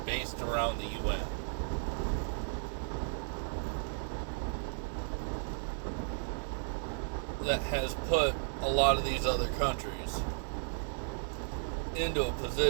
based around the UN. That has put a lot of these other countries into a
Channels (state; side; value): silent; left; digital silence